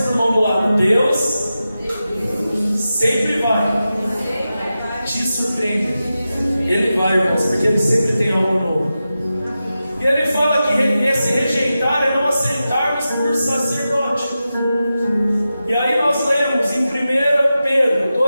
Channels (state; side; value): inverted; both; correlation -0.92